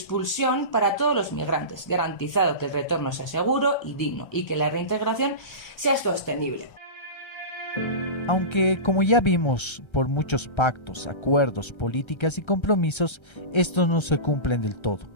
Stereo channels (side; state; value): right; late; 1.3 ms